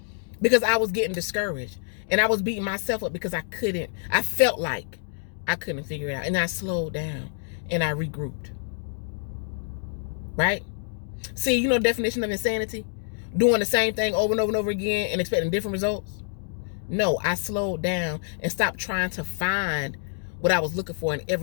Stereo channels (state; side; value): silent; right; digital silence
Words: Because I was getting discouraged. And I was beating myself up because I felt like I couldn't figure it out. And I slowed down and I regrouped. Right? See, you know the definition of insanity? Doing the same thing over and over and over again and expecting different results? No, I slowed down and stopped trying to find what I was looking for in